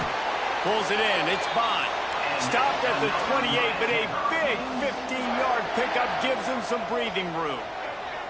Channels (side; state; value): both; identical; correlation 1.00